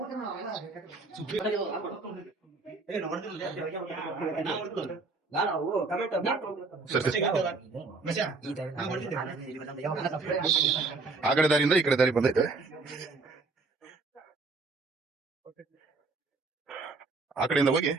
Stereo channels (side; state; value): left; quieter; 3.8 dB